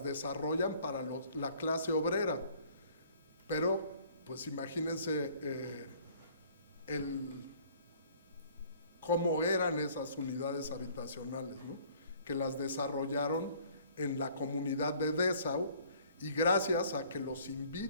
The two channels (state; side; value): inverted; both; correlation -0.56